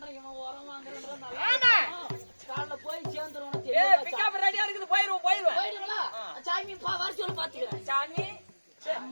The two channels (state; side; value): inverted; both; correlation -1.00